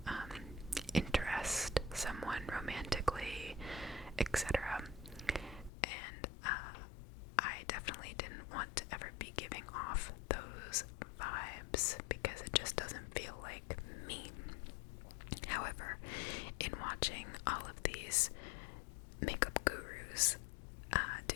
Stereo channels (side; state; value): right; drops out; at 5.7 s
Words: interest someone romantically, etc. And I definitely didn't want to ever be giving off those vibes because it just doesn't feel like me. However, in watching all of these makeup gurus do